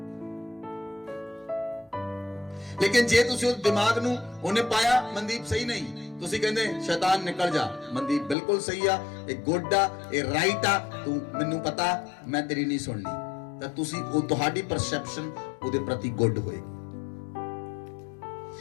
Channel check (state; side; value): drops out; right; at 8.3 s